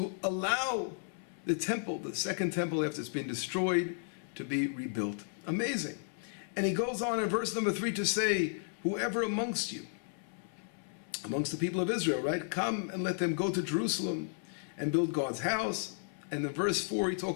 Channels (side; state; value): right; silent; 55 dB below the other